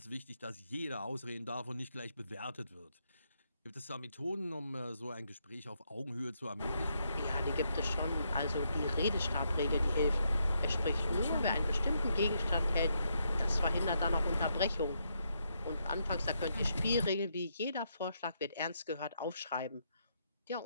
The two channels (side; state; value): both; inverted; correlation -0.78